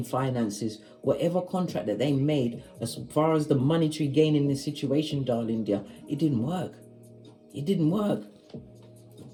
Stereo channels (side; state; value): both; identical; correlation 1.00